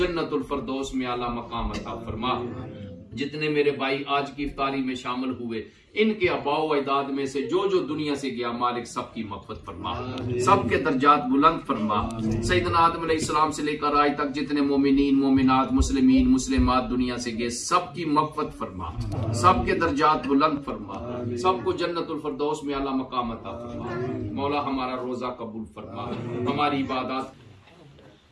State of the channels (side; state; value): both; identical; correlation 1.00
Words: जन्नतुल फरदौस में आला मकाम अता फरमा। जितने मेरे भाई आज की इफ्तारी में शामिल हुए, इनके अबाओ अजदाद में से जो जो दुनिया से गया, मालिक सबकी मग़फ़िरत फरमा, सबके दर्जात बुलंद फरमा। सैयदना आदम अलैहिस्सलाम से लेकर आज तक जितने मोमिनीन मोमिनात मुस्लिमीन मुस्लिमात दुनिया से गए, सबकी मग़फ़िरत फरमा, सबके दर्जात बुलंद फरमा, सबको जन्नतुल फरदौस में आला मकाम अता फरमा। मौला हमारा रोजा कबूल फरमा, हमारी इबादत